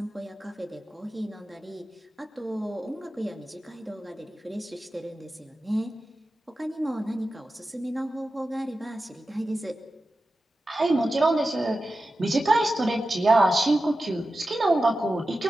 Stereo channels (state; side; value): normal; both; correlation 0.93